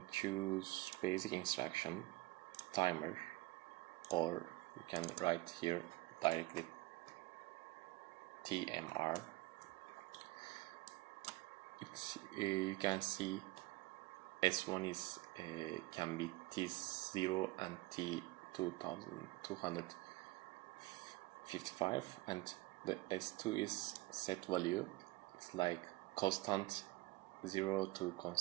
choose basic instruction, timer, or you can write here directly TMR. You can see S1 is can be T0 and T2255, and the S2 is set value. It's like constant 0 to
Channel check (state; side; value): quieter; left; 20.5 dB